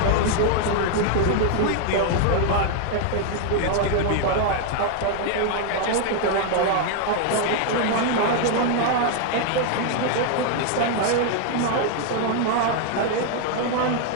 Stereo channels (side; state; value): both; different; correlation 0.00